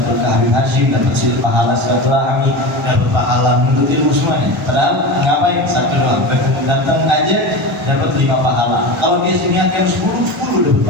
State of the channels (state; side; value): normal; both; correlation 0.26